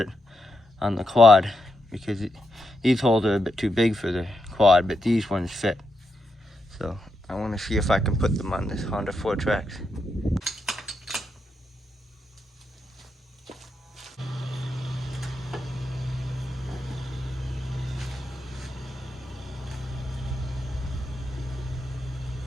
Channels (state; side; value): normal; both; correlation 0.84